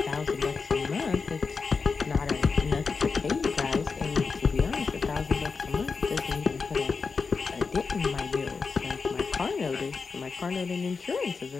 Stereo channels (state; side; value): quieter; right; 4.8 dB